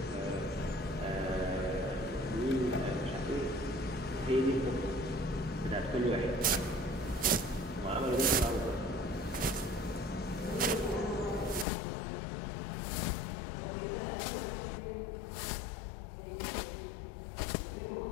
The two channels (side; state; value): right; drops out; at 11.7 s